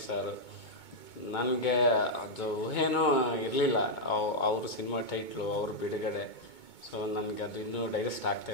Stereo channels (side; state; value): right; late; 2.2 ms